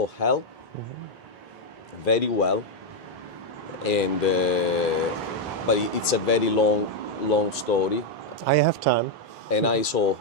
hell very well, and but it's a very long story. I have time. And I saw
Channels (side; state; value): both; normal; correlation 0.01